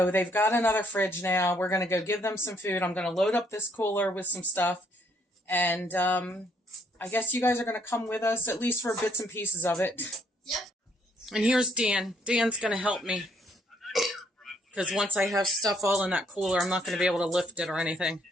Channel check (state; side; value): normal; both; correlation 0.68